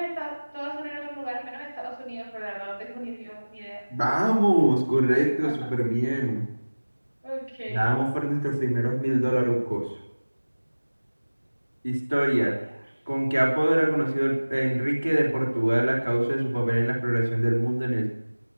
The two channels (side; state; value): both; inverted; correlation -1.00